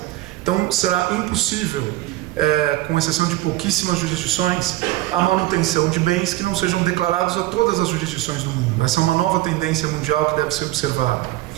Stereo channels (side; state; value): left; quieter; 16.8 dB